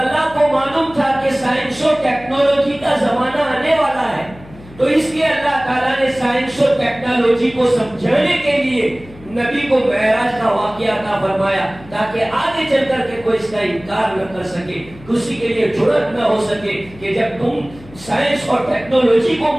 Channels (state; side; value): noise; left; hum, 20 dB below the sound